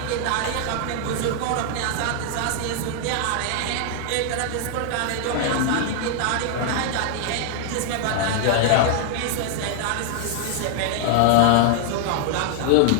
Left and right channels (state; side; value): different; both; correlation 0.00